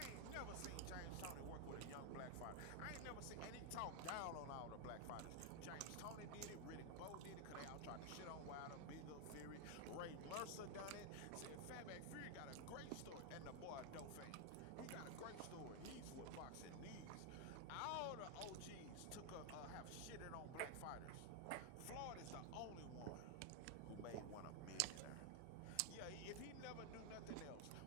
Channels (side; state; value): both; different; correlation 0.00